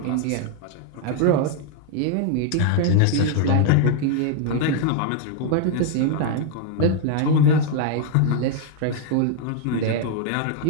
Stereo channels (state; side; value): different; both; correlation 0.00